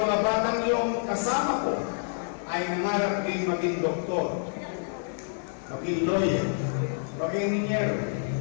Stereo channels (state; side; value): silent; right; 59 dB below the other